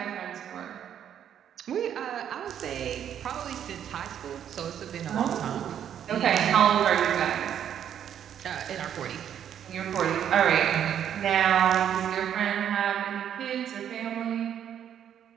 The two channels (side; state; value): left; quieter; 9.5 dB